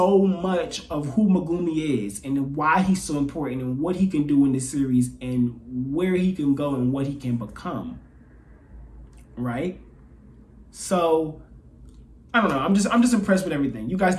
much of who Megumi is and why he's so important and what he can do in this series and where he can go and what he can become. Right? So I don't know. I'm just impressed with everything. You guys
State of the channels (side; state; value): both; identical; correlation 1.00